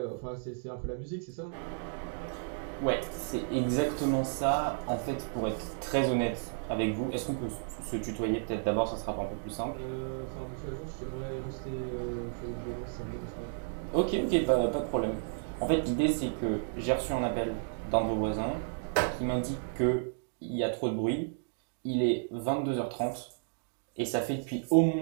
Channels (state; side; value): silent; left; digital silence